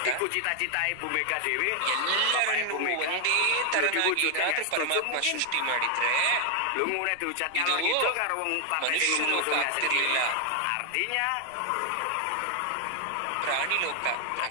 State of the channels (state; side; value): different; both; correlation 0.00